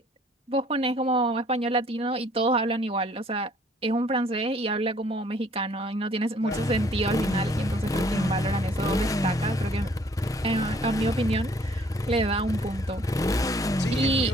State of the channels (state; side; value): normal; both; correlation 0.59